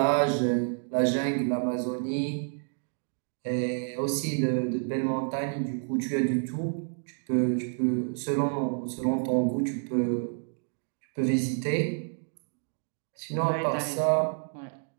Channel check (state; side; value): silent; left; 58 dB below the other